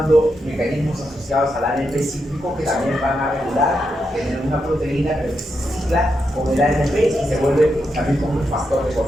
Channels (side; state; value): both; normal; correlation 0.84